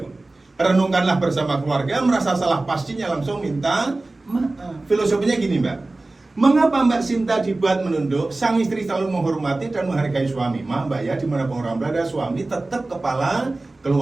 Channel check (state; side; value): quieter; left; 3.0 dB